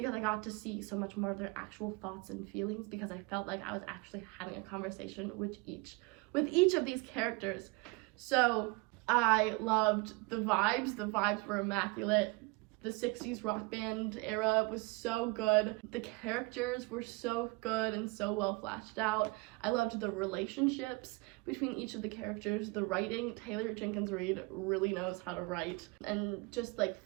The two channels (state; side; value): quieter; left; 25.9 dB